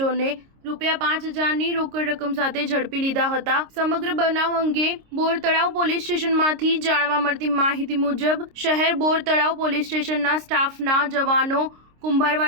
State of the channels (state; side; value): late; left; 26 ms